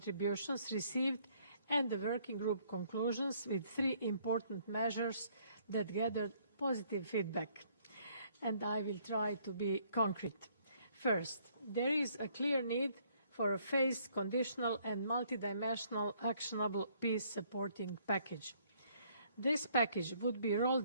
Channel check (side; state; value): both; inverted; correlation -0.65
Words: received and the working group conclusions with 3 important measures that gathered positive feedback. And I will try to be concrete. First, there is a clear need for a phased, conditional and multidimensional actionable peace-supporting package. This package would be